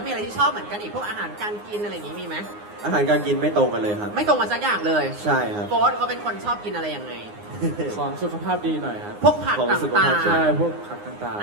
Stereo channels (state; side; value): late; left; 9.7 ms